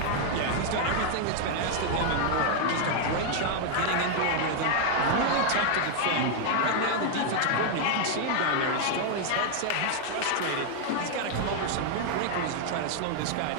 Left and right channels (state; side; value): different; both; correlation 0.00